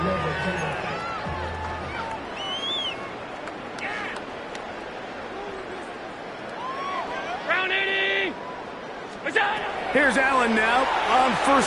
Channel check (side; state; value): both; identical; correlation 1.00